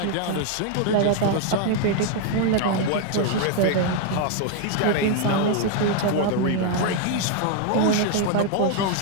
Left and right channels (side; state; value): both; different; correlation 0.01